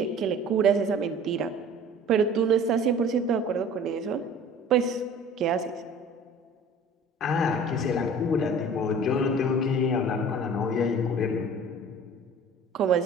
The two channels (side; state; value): both; normal; correlation 0.45